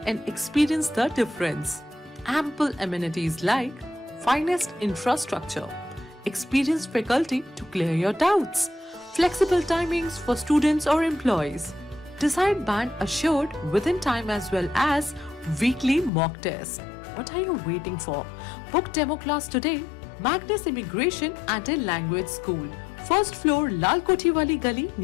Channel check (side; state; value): right; drops out; at 16.1 s